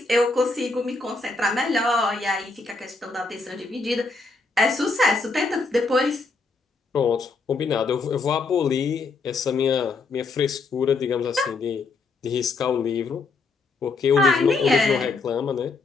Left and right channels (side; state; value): right; quieter; 3.9 dB